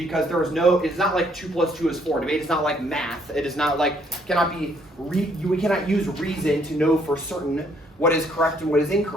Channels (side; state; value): both; normal; correlation 0.67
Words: it's not like 2 + 2 is 4. Debate is not like math. It is not like, we cannot use reason to know for certain what is correct and what is